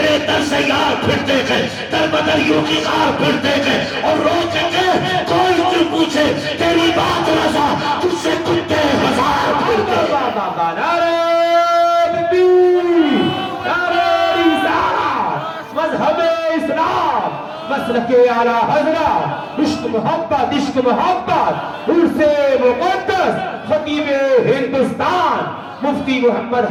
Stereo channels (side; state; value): both; identical; correlation 1.00